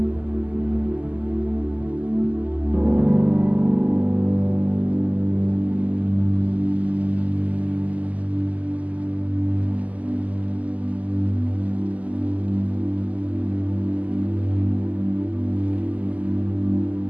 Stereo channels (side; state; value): left; late; 0.073 ms